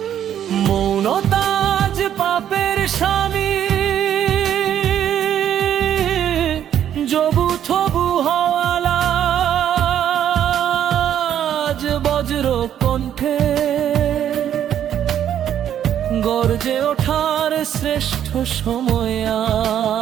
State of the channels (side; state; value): left; quieter; 10.1 dB